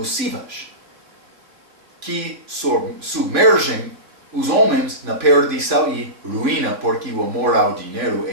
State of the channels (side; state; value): left; late; 3.4 ms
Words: que submergem os homens na perdição e ruína, porque o amor ao dinheiro